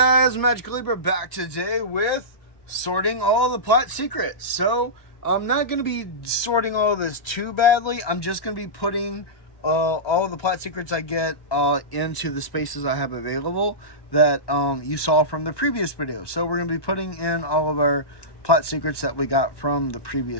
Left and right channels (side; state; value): right; late; 1.2 ms